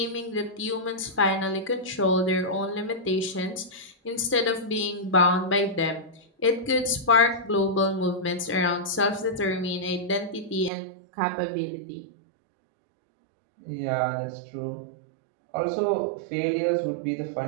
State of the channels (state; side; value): drops out; left; at 10.7 s